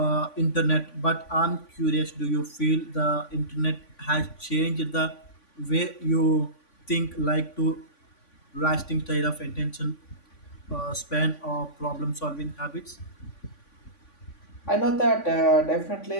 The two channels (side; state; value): right; late; 3.5 ms